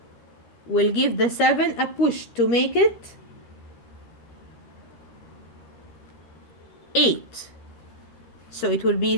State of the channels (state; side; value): late; right; 13 ms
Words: will give the 7 a push to make it 8. So it will be